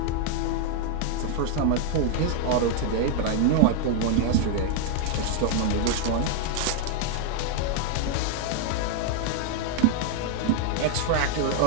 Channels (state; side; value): different; both; correlation 0.00